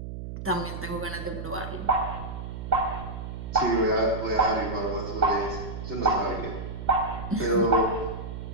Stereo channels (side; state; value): right; noise; hum, 8 dB below the sound